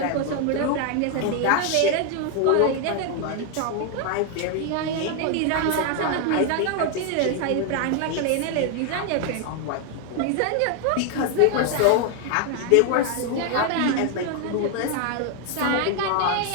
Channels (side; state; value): both; different; correlation 0.01